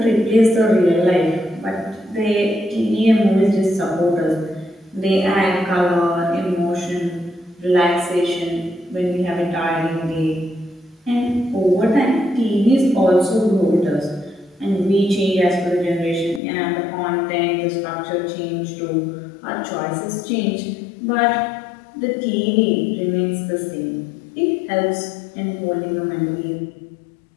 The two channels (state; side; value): drops out; right; at 16.4 s